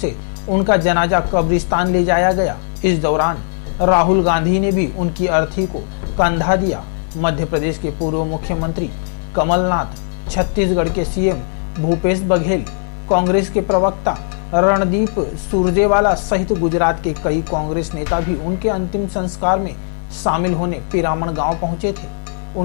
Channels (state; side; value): silent; right; 65 dB below the other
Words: उनका जनाजा कब्रिस्तान ले जाया गया। इस दौरान राहुल गांधी ने भी उनकी अर्थी को कंधा दिया। मध्य प्रदेश के पूर्व मुख्यमंत्री कमलनाथ, छत्तीसगढ़ के सीएम भूपेश बघेल, कांग्रेस के प्रवक्ता रणदीप सुरजेवाला सहित गुजरात के कई कांग्रेस नेता भी उनके अंतिम संस्कार में शामिल होने पिरामण गांव पहुंचे थे।